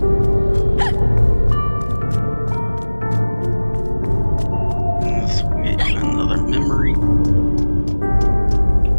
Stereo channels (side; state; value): both; inverted; correlation -1.00